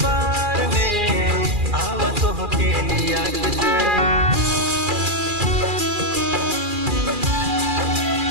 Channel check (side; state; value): left; late; 2.4 ms